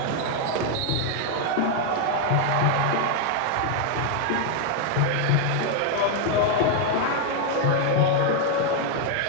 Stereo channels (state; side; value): different; both; correlation 0.01